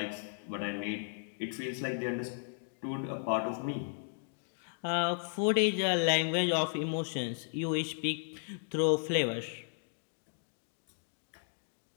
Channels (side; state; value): right; silent; digital silence